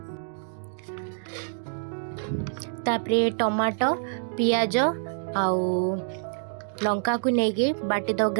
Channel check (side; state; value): left; silent; digital silence